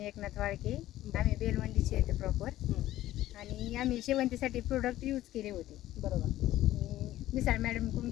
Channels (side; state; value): right; quieter; 14.5 dB